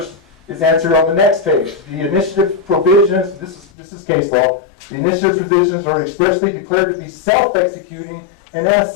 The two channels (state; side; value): drops out; right; at 3.7 s